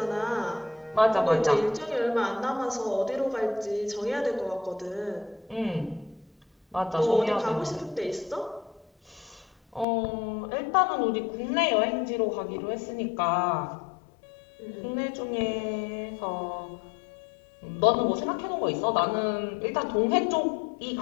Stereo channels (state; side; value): drops out; right; at 9.9 s